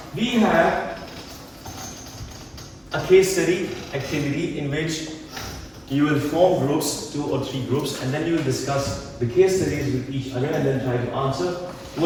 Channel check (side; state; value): both; identical; correlation 1.00